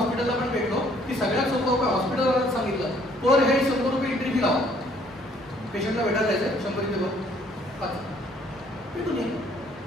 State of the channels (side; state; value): both; normal; correlation 0.62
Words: पण भेटलो की सगळ्यात सोपं उपाय हॉस्पिटलला सांगितलं, पर हेड 100 रुपये एंट्री फी लावा. पेशंटला भेटायला जायचं 100 रुपये बघ भेटून ये.